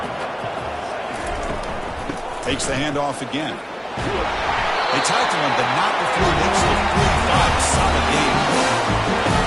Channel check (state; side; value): identical; both; correlation 1.00